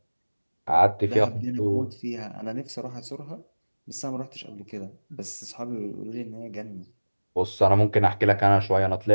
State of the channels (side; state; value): both; inverted; correlation -1.00